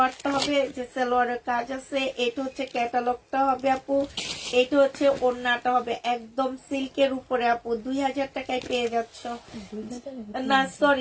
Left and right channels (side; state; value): both; identical; correlation 1.00